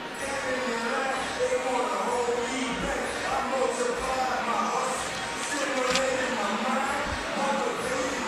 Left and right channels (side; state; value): both; identical; correlation 1.00